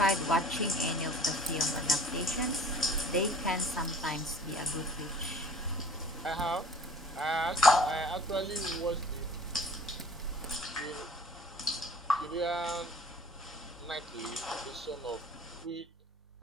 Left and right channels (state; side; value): normal; both; correlation 0.48